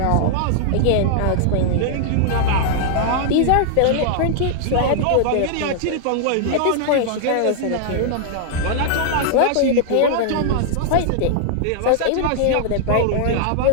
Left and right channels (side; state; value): both; different; correlation -0.01